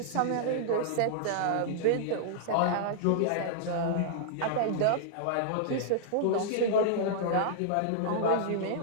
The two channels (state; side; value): different; both; correlation -0.02